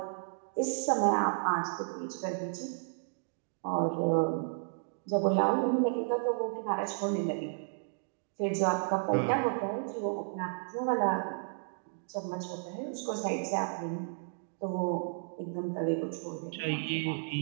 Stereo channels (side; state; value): left; silent; digital silence